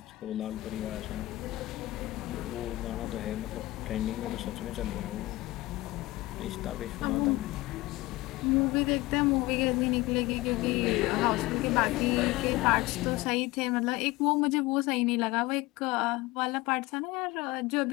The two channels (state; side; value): quieter; right; 19.5 dB